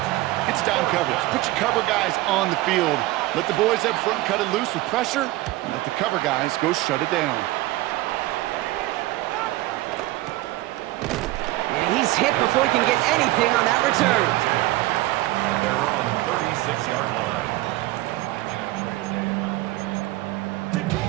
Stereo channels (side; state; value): left; quieter; 18.0 dB